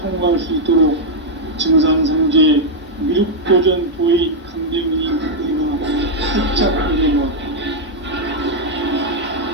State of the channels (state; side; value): normal; both; correlation -0.02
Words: 수 있도록 증산상제 미륵도전 도인 강대훈이 내가 살짝 열어놓았다.